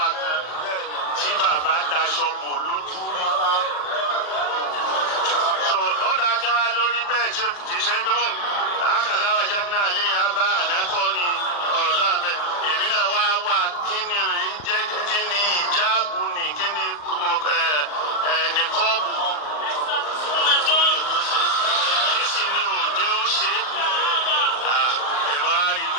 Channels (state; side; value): late; right; 40 ms